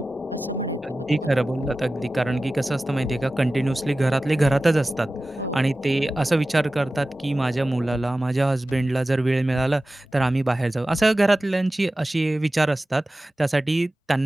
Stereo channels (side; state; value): both; normal; correlation 0.96